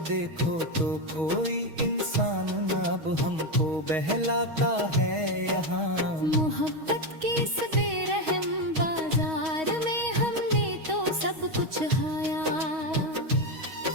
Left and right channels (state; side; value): late; left; 6.3 ms